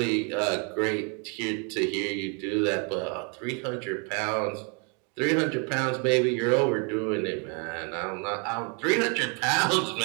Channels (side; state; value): left; quieter; 35.9 dB